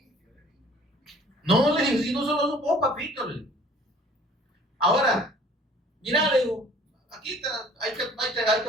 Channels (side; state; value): both; normal; correlation 0.52